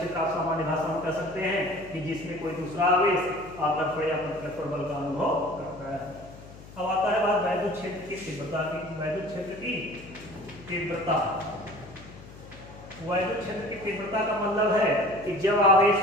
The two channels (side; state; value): left; noise; hum, 18 dB below the sound